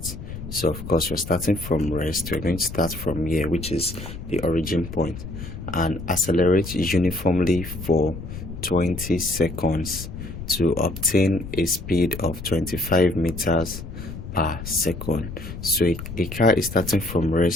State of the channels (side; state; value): left; noise; rumble, 10 dB below the sound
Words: So of course we're starting from rest. We're going to start from here, which is the origin point, and accelerate uniformly for 20 seconds to obtain a speed of 25 meters per second. So a car is starting from